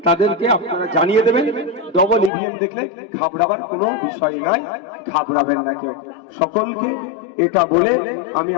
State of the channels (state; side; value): drops out; right; at 2.3 s